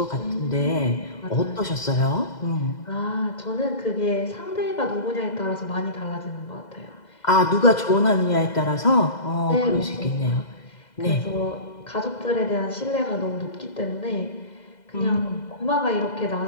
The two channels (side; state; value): right; late; 2.0 ms